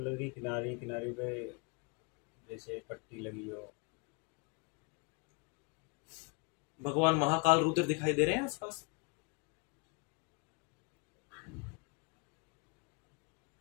की किनारी किनारी पे जैसे पट्टी लगी हो। भगवान महाकाल रुद्र दिखाई दे रहे हैं आसपास?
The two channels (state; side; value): quieter; right; 31.6 dB